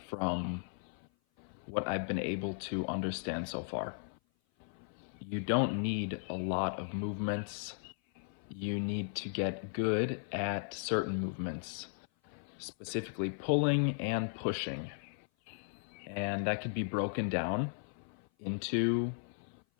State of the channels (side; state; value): right; silent; 53 dB below the other